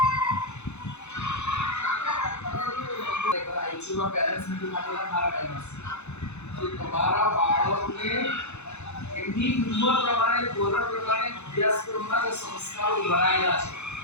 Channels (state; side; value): late; right; 0.81 ms